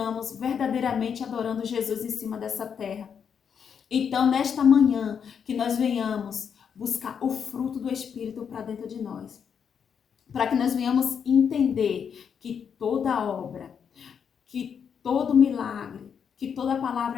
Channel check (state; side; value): quieter; right; 7.2 dB